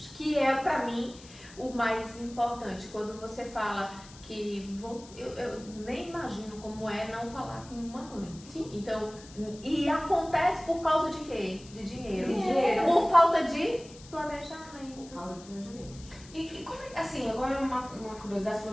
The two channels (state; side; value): noise; left; hiss, 20 dB below the sound